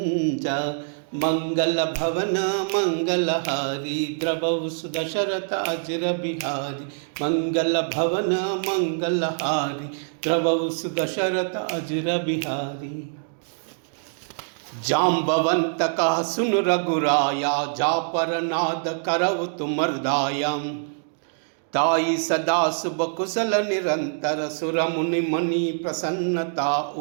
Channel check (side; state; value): left; silent; digital silence